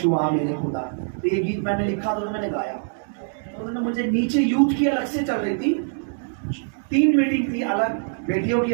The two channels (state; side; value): silent; left; 63 dB below the other